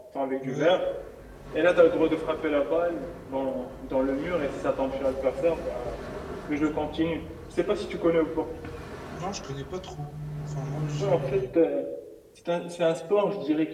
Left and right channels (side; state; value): both; identical; correlation 1.00